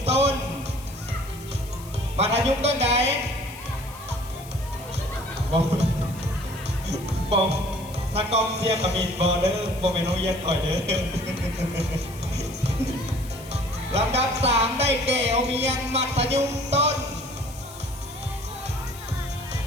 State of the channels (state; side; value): noise; left; hiss, 18 dB below the sound